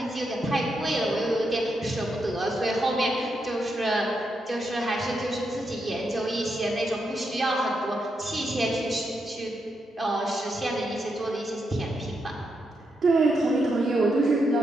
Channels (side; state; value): both; normal; correlation 0.83